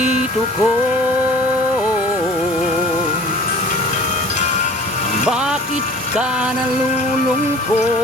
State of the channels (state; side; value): normal; both; correlation 0.45